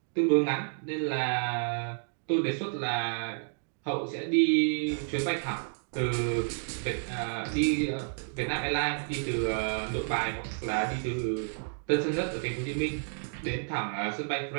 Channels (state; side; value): silent; left; digital silence